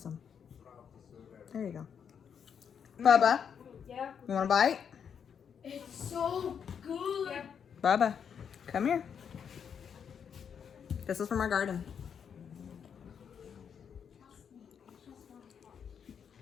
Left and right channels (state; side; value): quieter; right; 7.5 dB